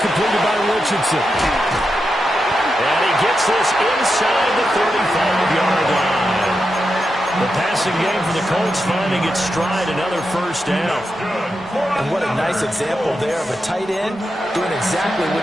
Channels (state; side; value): normal; both; correlation 0.87